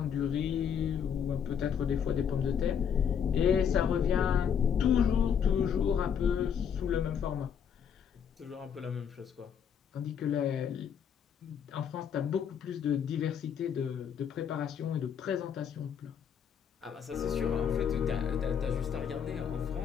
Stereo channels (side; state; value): right; quieter; 7.8 dB